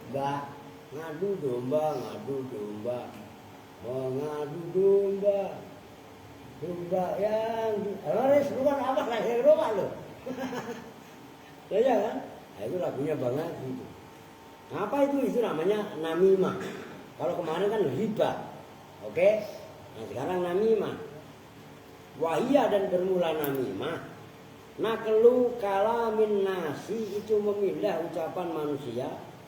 Ngadu domba. Mengadu domba. Domba yang Loris bukan apa lahir domba lo. Ya kan? Nah, itu lagunya banget gitu. Apa itu? Itu namanya namimah. Kalau kemarin kan riba. Oke? Nah sekarang namimah. Wahia dan bermula namimah. Naklu kalamin nasi itu memindah ucapan manusia.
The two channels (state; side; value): identical; both; correlation 1.00